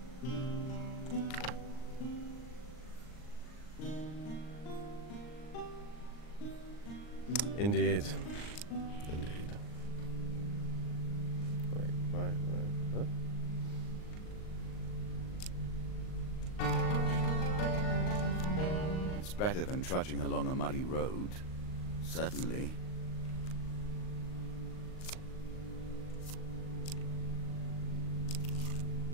Indeed. Indeed. Wait, what? It's better than trudging along a muddy road. Certainly.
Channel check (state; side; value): late; right; 39 ms